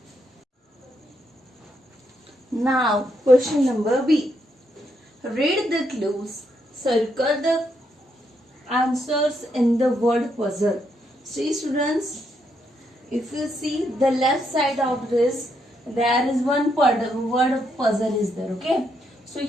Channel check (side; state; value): both; normal; correlation 0.78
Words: Now, question number B. Read the clues. Circle the answers in the word puzzle. See students, if you see the left side of this, there is one word puzzle is there. Okay. So